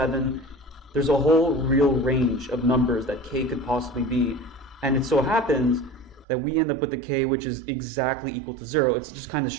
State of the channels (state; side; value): drops out; left; at 6.2 s